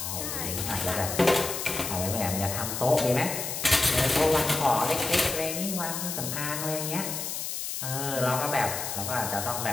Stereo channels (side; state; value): left; noise; hiss, 4 dB below the sound